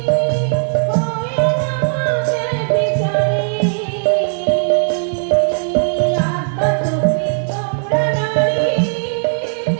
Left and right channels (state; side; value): silent; left; digital silence